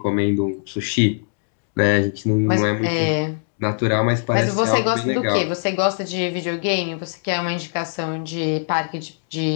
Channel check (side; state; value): right; silent; digital silence